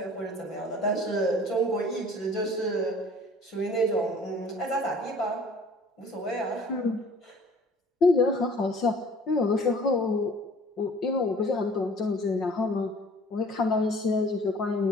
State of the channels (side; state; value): both; normal; correlation 0.50